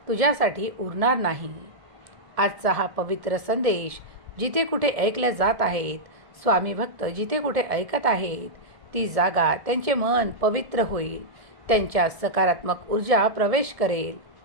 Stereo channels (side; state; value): left; late; 1.7 ms